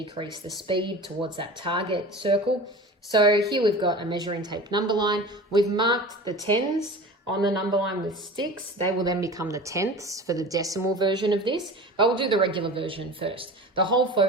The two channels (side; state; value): both; normal; correlation 0.35